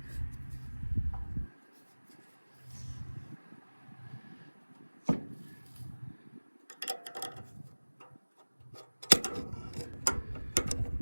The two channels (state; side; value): inverted; both; correlation -1.00